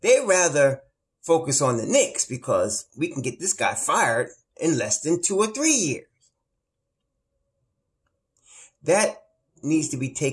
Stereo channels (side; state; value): both; identical; correlation 1.00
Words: They rather focus on the Knicks because we can get this guy fired in less than 2 or 3 years. That needs to be